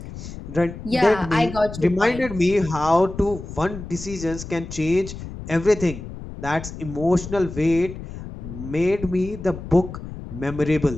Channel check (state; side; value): noise; left; rumble, 11 dB below the sound